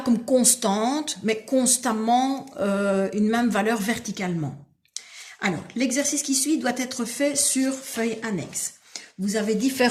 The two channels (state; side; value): identical; both; correlation 1.00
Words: comme constante, mais constamment une même valeur verticalement. Alors, l'exercice qui suit doit être fait sur feuille annexe. Vous avez